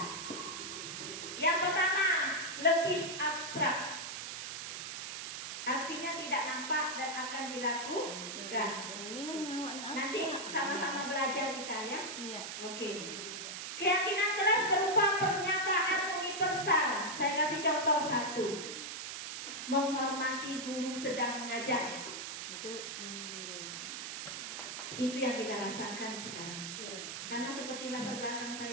Yang pertama, lebih abstrak. Artinya tidak nampak dan akan dilakukan. Nanti sama-sama belajar kita ya. Iya. Oke. Keyakinan kelas berupa pernyataan universal. Saya kasih contoh satu. Menghormati guru sedang mengajar. Itu yang kita rasakan sekarang. Karena seperti latar belakang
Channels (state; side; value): noise; right; hiss, 6 dB below the sound